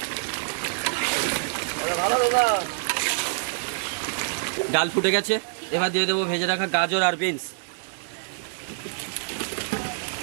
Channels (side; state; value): left; silent; 61 dB below the other